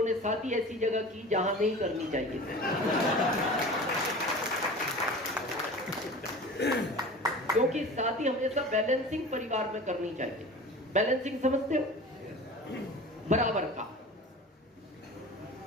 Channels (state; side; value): normal; both; correlation 0.37